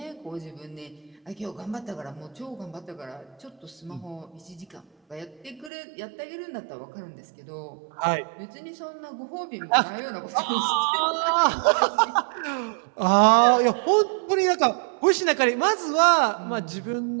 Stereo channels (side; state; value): left; drops out; at 5.7 s